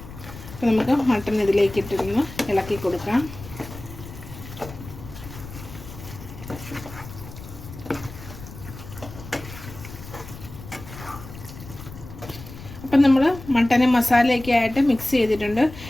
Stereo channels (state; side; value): noise; left; rumble, 14 dB below the sound